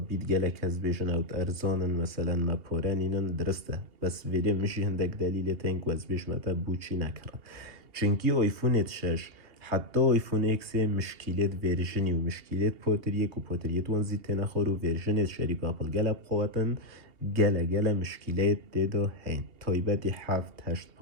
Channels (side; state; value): left; late; 2.8 ms